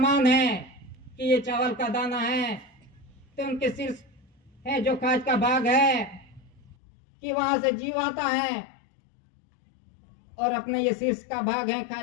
है कि ये चावल का दाना है तो उनके शीर्ष है जो कांच का भाग है कि वहां से जीव आता है, और अपने ये शीर्ष का भाग है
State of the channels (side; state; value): right; drops out; at 6.7 s